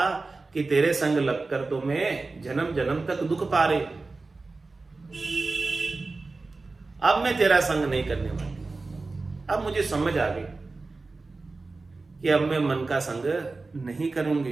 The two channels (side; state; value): left; quieter; 3.7 dB